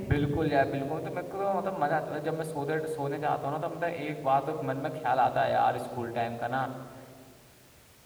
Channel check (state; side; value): identical; both; correlation 1.00